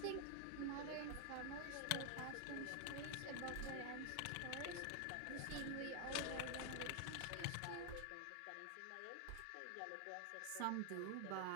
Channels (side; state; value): both; different; correlation 0.00